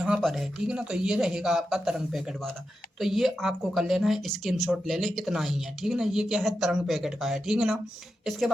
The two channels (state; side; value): normal; both; correlation 0.89